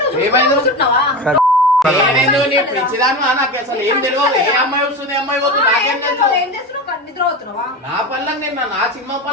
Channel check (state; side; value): normal; both; correlation 0.24